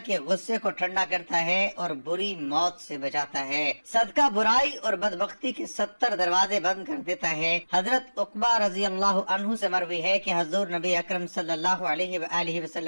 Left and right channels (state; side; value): inverted; both; correlation -1.00